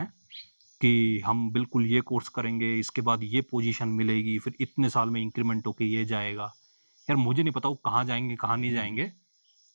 कि हम बिल्कुल ये कोर्स करेंगे, इसके बाद ये पोजीशन मिलेगी, फिर इतने साल में इंक्रीमेंट होके ये जाएगा, यार मुझे नहीं पता वो कहाँ जाएंगे कहाँ नहीं जाएंगे।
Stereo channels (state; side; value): inverted; both; correlation -1.00